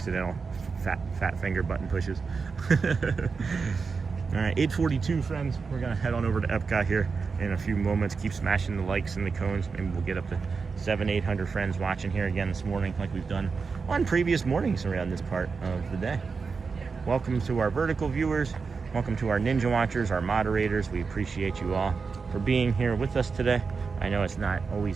fat finger button pushes. All right, 8:42, friends. We're gonna head on over to Epcot here in a few moments. Keep smashing the likes and the cones. Maybe we'll get up to 700-800 friends watching here again this morning, like we've done on previous mornings around this part of the day. Welcome to our vertical viewers. Welcome to our Ninja Watchers, our moderators. We appreciate you all for being here with us today. I know it's not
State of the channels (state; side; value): quieter; left; 4.9 dB